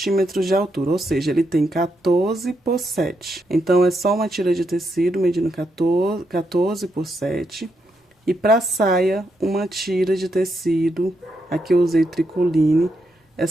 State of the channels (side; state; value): both; normal; correlation 0.81